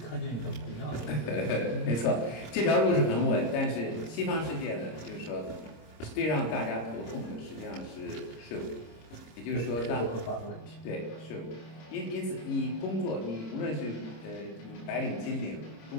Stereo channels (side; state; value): right; late; 26 ms